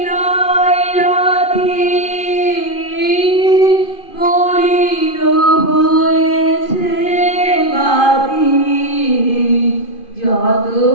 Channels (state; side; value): late; right; 2.5 ms